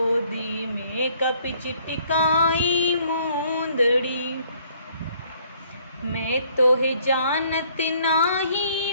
में कपि छिटकाई मुंदड़ी। मैं तो है जानत नाही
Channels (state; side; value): inverted; both; correlation -0.63